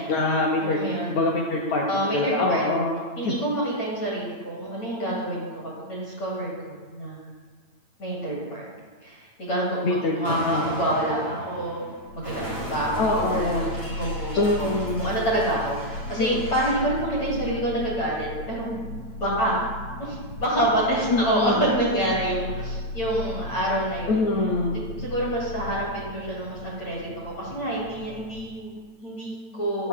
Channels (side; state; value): right; late; 8.9 ms